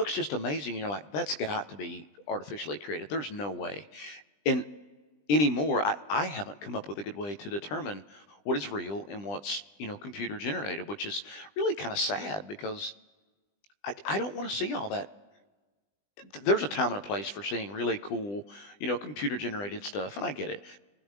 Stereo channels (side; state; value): right; late; 20 ms